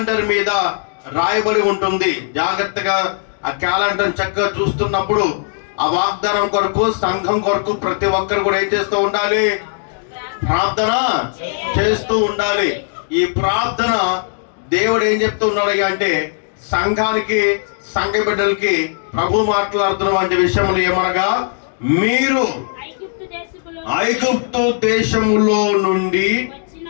ఉంటుంది. జాగ్రత్తగా ఆ క్యాలెండర్ చక్కగా చూస్తున్నప్పుడు ఆ వాగ్దానం కొరకు, సంఘం కొరకు ప్రతి ఒక్కరు కూడా ఏం చేస్తూ ఉండాలి? ప్రార్థన చేస్తూ ఉండాలి. ఈ ప్రార్థన దేవుడు ఏం చెప్తూ ఉన్నాడు అంటే, సంఘానికి, సంఘ బిడ్డలకి ప్రభు మాట్లాడుతున్నటువంటి విషయములు ఏమనగా, మీరు ఐగుప్తు దేశములో నుండి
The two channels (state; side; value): silent; right; digital silence